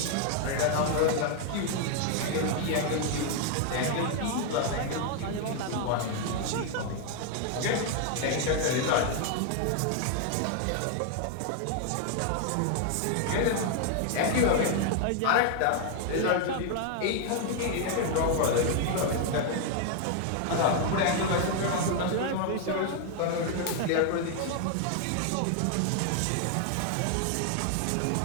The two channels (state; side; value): different; both; correlation 0.00